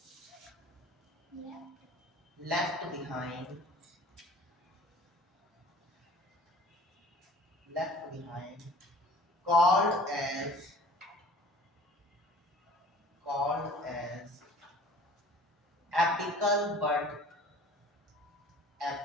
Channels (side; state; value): both; normal; correlation 0.47